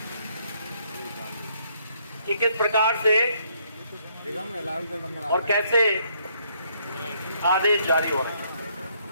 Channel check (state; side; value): inverted; both; correlation -0.70